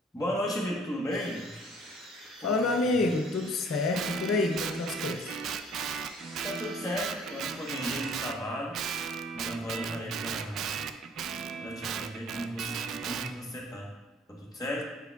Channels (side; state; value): both; normal; correlation 0.55